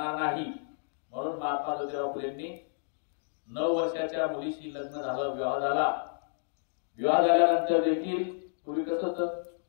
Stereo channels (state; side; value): silent; right; digital silence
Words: नाही। म्हणून महात्मा ज्योतिबा फुलेंनी 9 वर्षाच्या मुलीशी लग्न झालं, विवाह झाला। विवाह झाल्यानंतर देखील पूर्वी कसं होतं,